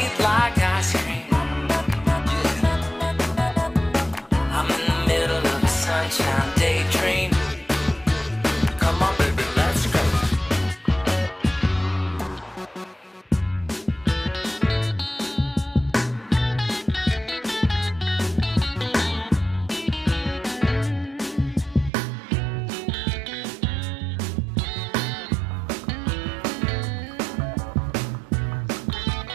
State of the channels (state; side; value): drops out; left; at 21.9 s